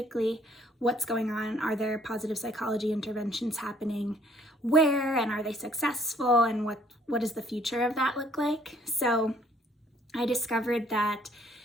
what's going on. Are there positive psychology interventions happening? Where, and are they successful? And what does the future of that look like? So I discovered that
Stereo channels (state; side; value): normal; both; correlation 0.62